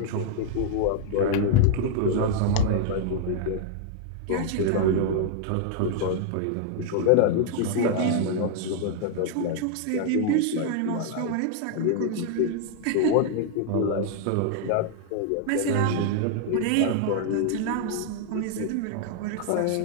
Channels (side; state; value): both; different; correlation 0.00